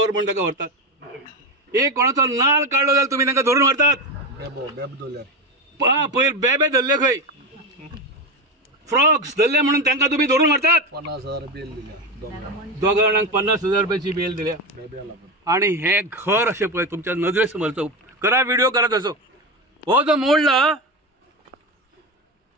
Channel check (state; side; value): normal; both; correlation 0.17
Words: म्हणून ताका व्हरतात. एक कोणाचो नाल काडलो जाल्यार तुम्ही ताका धरून व्हरतात. पयर बेबे धरले खंय फ्रॉक्स धरले म्हणून तांकां तुम्ही धरून व्हरतात. 50,000 बेल दिल्या. दोगां जाणांक 50,000 रुपयाची बेल दिल्या. आणि हे घर अशें पळय तुमच्या नजरे समोरचो करा व्हिडिओ करा तसो. हो जो मोडला